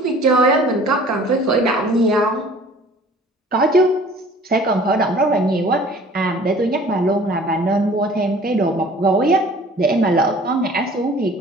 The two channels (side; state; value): both; normal; correlation 0.49